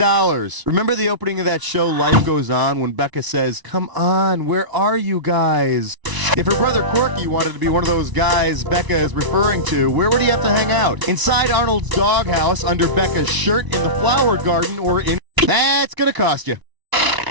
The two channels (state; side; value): late; left; 1.0 ms